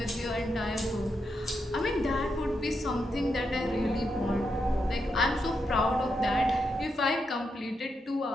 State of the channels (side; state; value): both; normal; correlation 0.84